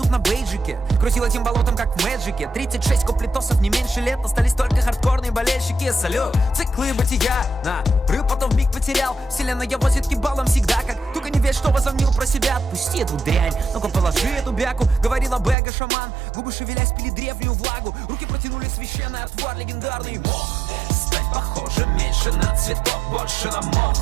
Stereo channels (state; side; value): drops out; left; at 15.6 s